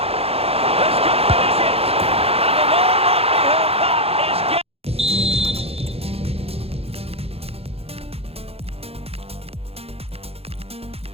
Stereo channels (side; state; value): left; late; 0.29 ms